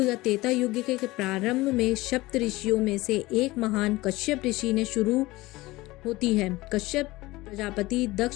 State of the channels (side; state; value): right; quieter; 19.7 dB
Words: या त्रेता युग के प्रारंभ में सप्त ऋषियों में से एक महान कश्यप ऋषि ने शुरू होती है। कश्यप प्रजापति